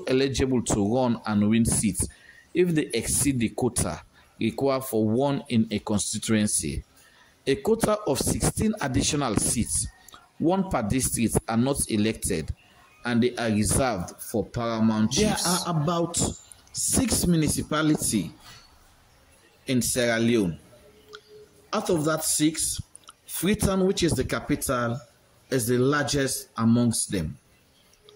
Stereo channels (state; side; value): identical; both; correlation 1.00